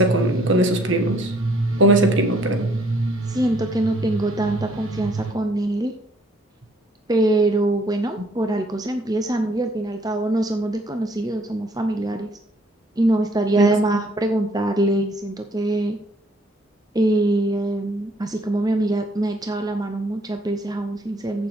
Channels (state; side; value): normal; both; correlation 0.63